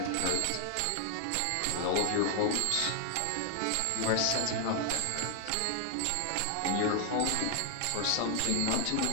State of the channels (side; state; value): both; different; correlation 0.00